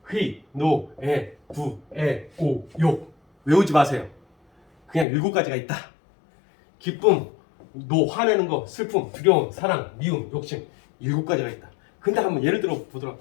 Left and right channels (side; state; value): right; drops out; at 5.1 s